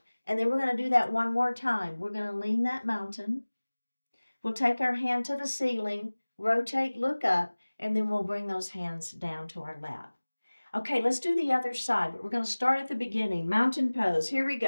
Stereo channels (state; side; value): inverted; both; correlation -1.00